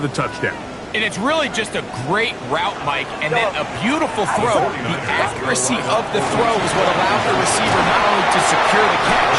touchdown. And it's really just a great route, Mike, and then a beautiful throw. The accuracy of the throw is what allowed the receiver not only to secure the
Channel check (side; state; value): both; identical; correlation 1.00